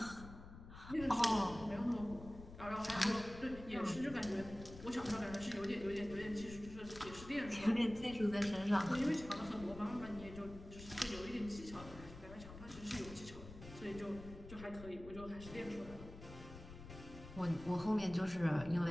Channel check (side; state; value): left; noise; rumble, 14 dB below the sound